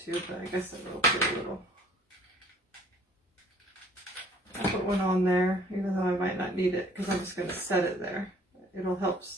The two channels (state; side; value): normal; both; correlation 0.56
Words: to, but I guess I will put a little. I'll put one on there, even though I might not need it, because I'm just going to set it there. It'll help